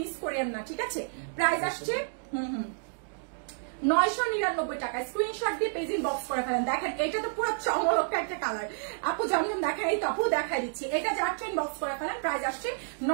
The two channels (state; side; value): silent; left; digital silence